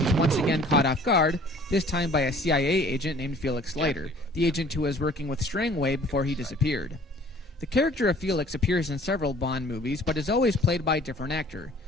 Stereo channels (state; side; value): normal; both; correlation 0.52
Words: once again caught off guard, this time by a CIA agent named Felix Leiter, the agent who was working with Strangway before he disappeared. The character of Felix appears in several Bond movies, but is always played by a different actor.